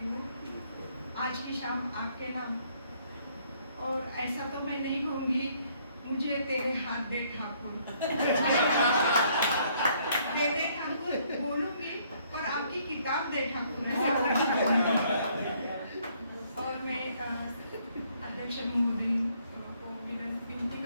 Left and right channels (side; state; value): both; inverted; correlation -0.66